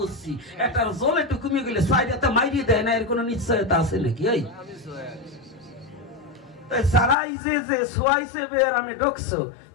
একটার জলে একটু কমিয়ে গেলে সাইডে মাইরিয়ে দেয় না, এর কোনো নিশ্চয়তা আছে নাকি? ওই সারাই যে সোয়াইছে বের আমি ঢুকছো,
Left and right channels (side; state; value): right; drops out; at 7.2 s